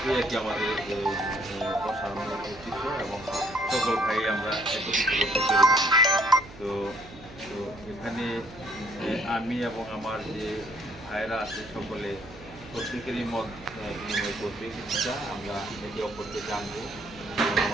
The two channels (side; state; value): right; noise; hum, 18 dB below the sound